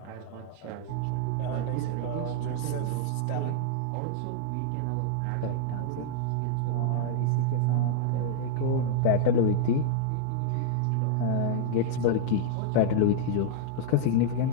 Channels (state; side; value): different; both; correlation -0.01